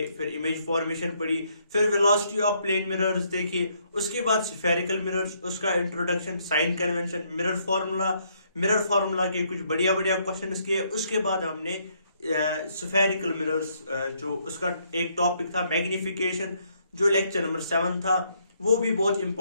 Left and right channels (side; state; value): both; inverted; correlation -0.71